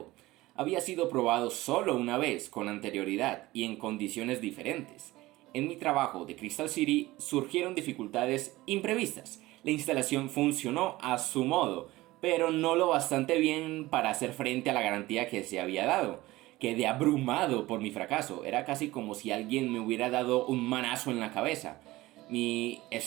Había sido probado solo una vez con anterioridad y en condiciones diferentes. En mi trabajo de Crystal City surgieron dificultades imprevistas. La instalación funcionó a su modo, pero no lo bastante bien para hacer frente a la garantía que se había dado. Quedé abrumado por mi fracaso. Era casi como si alguien me hubiera dado un manazo en la cabeza. Mi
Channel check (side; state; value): left; quieter; 18.6 dB